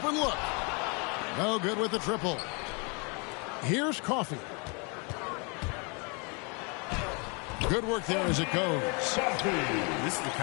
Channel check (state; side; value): quieter; right; 33.0 dB